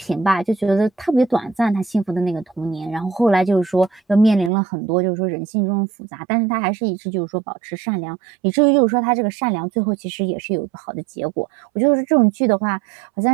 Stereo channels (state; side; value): drops out; left; at 4.5 s